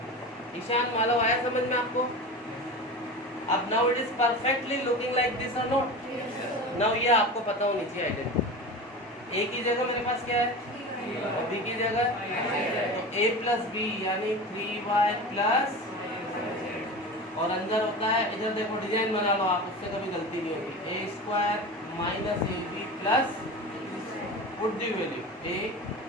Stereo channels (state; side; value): normal; both; correlation 0.30